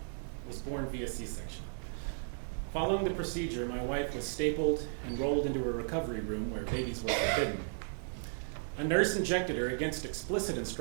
was born via C-section. Following the procedure, my wife was stapled and rolled into a recovery room where babies were forbidden. A nurse injected her against explicit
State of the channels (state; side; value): silent; left; digital silence